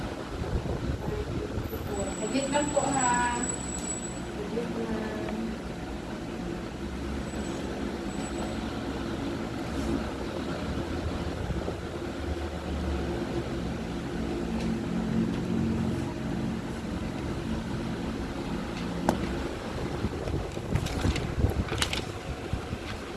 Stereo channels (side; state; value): both; identical; correlation 1.00